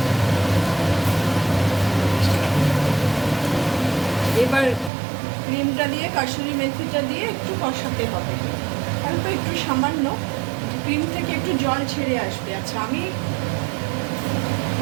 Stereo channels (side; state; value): left; drops out; at 4.9 s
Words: এবার ক্রিমটা দিয়ে কাসুরি মেথিটা দিয়ে একটু কষাতে হবে, অল্প একটু সামান্য, ক্রিম থেকে একটু জল ছেড়ে আসবে। আচ্ছা, আমি